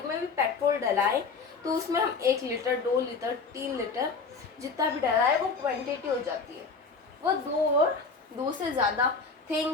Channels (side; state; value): right; quieter; 4.6 dB